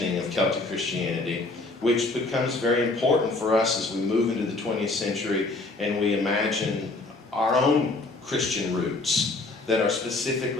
of Celtic Christianity, which becomes very important for us as we move into the 20th century and we imagine our own Christian roots that are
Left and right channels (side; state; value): right; quieter; 3.2 dB